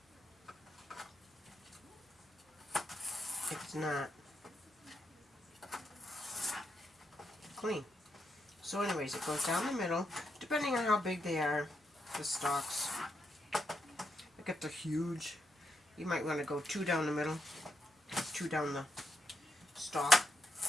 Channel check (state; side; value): normal; both; correlation 0.82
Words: it's not clean. So anyways, it goes down the middle, depending on how big they are, the stalks. Like if they're huge, you might want to go 2 down the middle, 2 down the stalk.